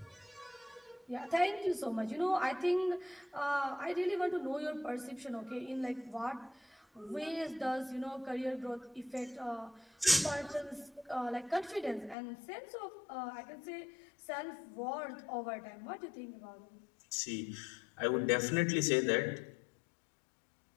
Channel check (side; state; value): right; drops out; at 12.2 s